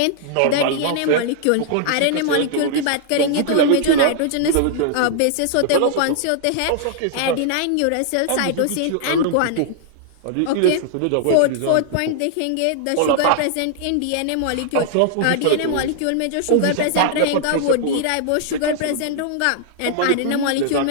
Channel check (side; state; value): both; different; correlation -0.01